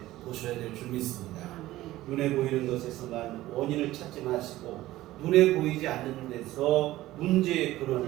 보셔야 될 줄 믿습니다. 눈에 보이는 것에서만 원인을 찾지 마시고 눈에 보이지 않는 데서 문제의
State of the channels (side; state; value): left; quieter; 16.2 dB